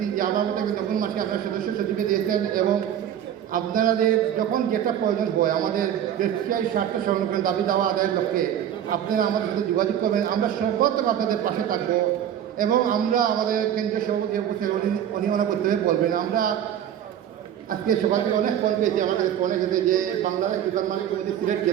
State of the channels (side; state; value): left; quieter; 10.1 dB